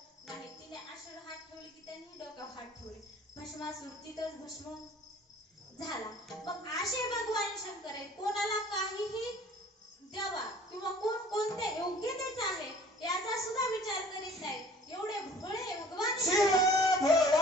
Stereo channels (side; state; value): both; normal; correlation 0.50